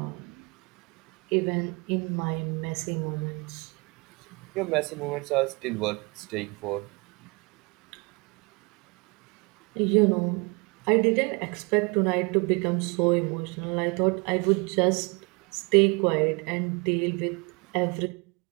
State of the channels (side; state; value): left; quieter; 29.6 dB